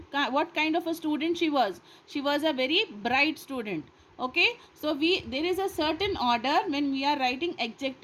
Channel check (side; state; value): both; identical; correlation 1.00